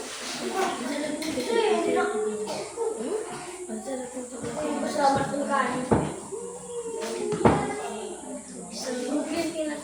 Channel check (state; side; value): noise; right; hum, 30 dB below the sound